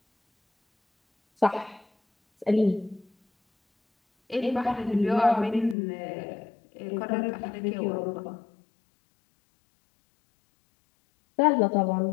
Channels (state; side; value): drops out; right; at 5.8 s